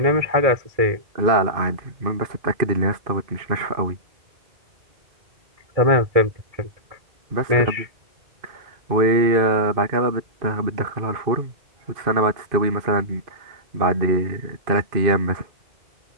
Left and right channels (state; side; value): late; left; 2.5 ms